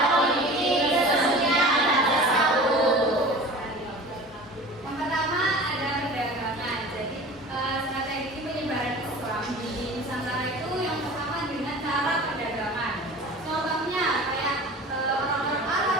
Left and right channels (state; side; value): normal; both; correlation 0.39